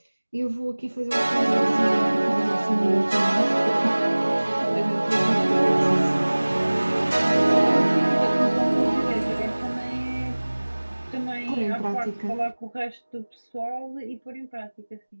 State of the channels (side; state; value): both; inverted; correlation -1.00